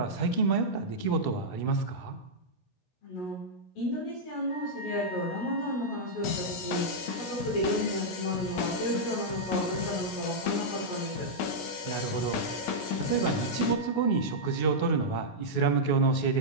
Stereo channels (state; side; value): late; right; 16 ms